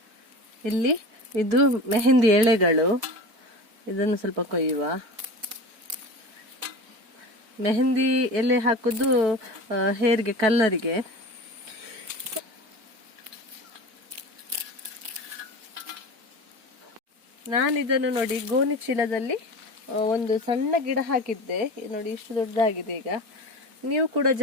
ಇಲ್ಲಿ ಇದು ಮೆಹಂದಿ ಎಳೆಗಳು, ಇದನ್ನು ಸ್ವಲ್ಪ ಕೊಯ್ಯುವ. ಮೆಹಂದಿ ಎಲೆ ಹಾಕುದು ಹೇರ್ಗೆ ಕಲರಿಗೆ. ನಾನಿದನ್ನು ನೋಡಿ ಗೋಣಿ ಚೀಲದಲ್ಲಿ ಒಂದು ಸಣ್ಣ ಗಿಡ ಹಾಕಿದ್ದೆ. ನೋಡಿ ಇಷ್ಟು ದೊಡ್ಡದಾಗಿದೆ. ಈಗ ನೀವು ಕೂಡ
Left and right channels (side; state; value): left; late; 4.6 ms